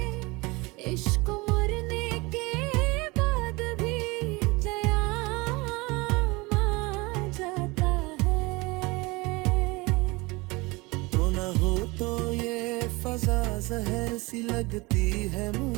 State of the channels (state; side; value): quieter; left; 24.2 dB